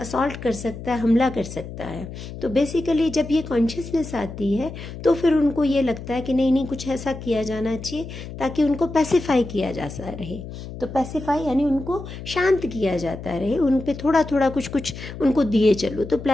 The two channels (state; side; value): noise; left; hum, 11 dB below the sound